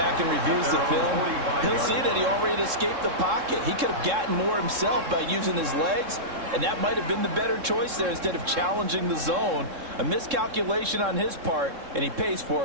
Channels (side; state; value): left; late; 3.7 ms